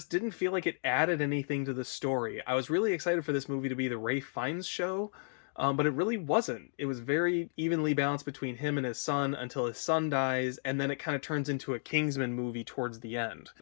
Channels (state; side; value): silent; right; digital silence